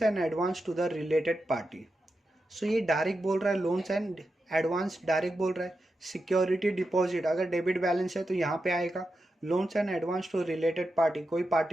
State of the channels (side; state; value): both; normal; correlation 0.88